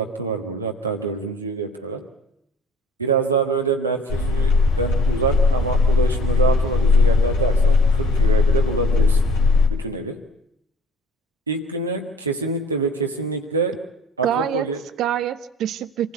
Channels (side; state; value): both; normal; correlation 0.52